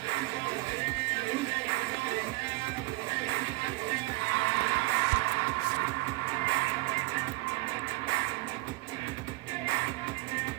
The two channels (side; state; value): left; quieter; 22.9 dB